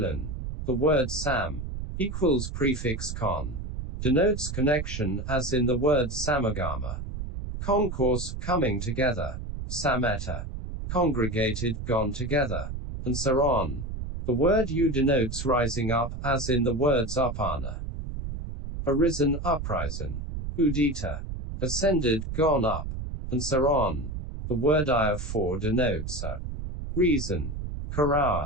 word sam equals prefix con. denotes connection, as in the word samagama. Concourse, coming together. Sameta, congregated, gone together. And so on. The word U denotes rising up, as in the words upana. Arisen, uprising. Udita, ascended, gone up. And so on. The word I for denotes a reason.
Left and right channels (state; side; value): noise; right; rumble, 6 dB below the sound